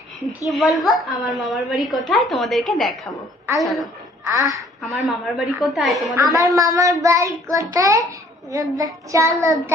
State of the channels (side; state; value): both; normal; correlation 0.59